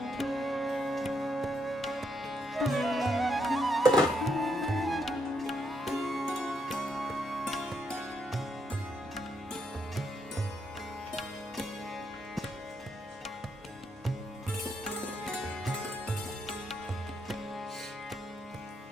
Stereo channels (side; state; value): both; normal; correlation 0.77